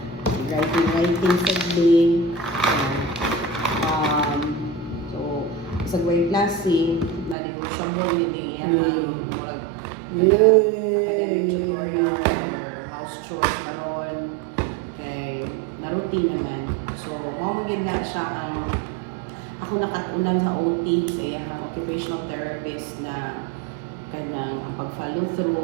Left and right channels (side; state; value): left; drops out; at 7.4 s